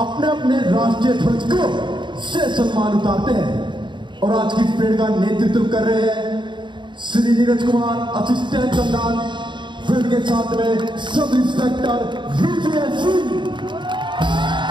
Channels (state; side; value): late; left; 0.23 ms